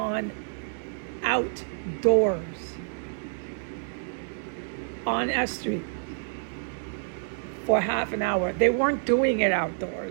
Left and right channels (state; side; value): silent; left; digital silence